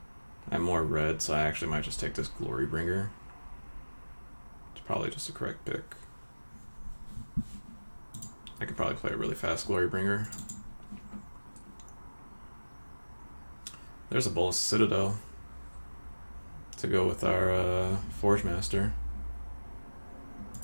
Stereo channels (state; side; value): inverted; both; correlation -1.00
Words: I'm more red, so I actually might just take this Glory Bringer. It's probably just a correct pick. I could probably play a really fast Glory Bringer. There's a Bolas Citadel. to go with our Forge Master.